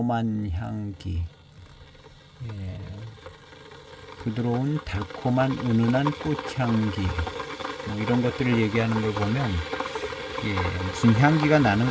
향기, 예, 부드러운 달콤한 은은한 꽃향기, 뭐 이런 것들을 얘기하는 걸 보면 예, 무슨 향기가 나는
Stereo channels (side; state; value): both; identical; correlation 1.00